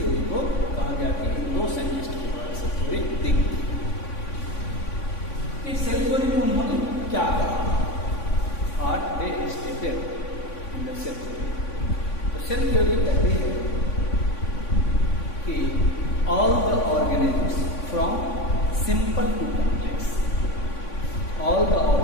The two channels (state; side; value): late; right; 3.5 ms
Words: को कहा गया कि इन दो साइंटिस्ट के द्वारा सेल थ्योरी दी गई। इस सेल थ्योरी में उन्होंने क्या कहा? What they stated in the cell theory. तो सेल थ्योरी कहती है कि all the organisms from simple to complex, all the